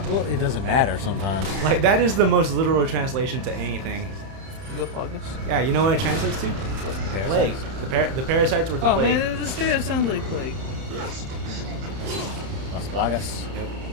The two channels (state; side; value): late; left; 31 ms